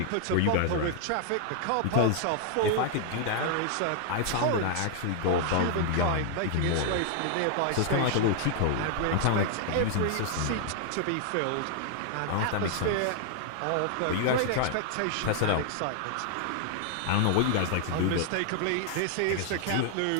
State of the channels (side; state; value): both; different; correlation 0.00